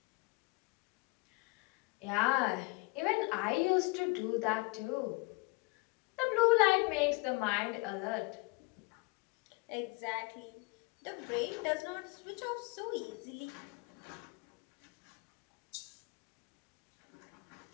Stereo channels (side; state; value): right; quieter; 27.8 dB